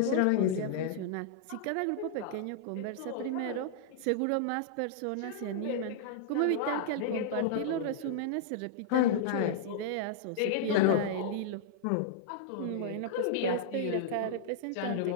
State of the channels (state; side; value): different; both; correlation -0.01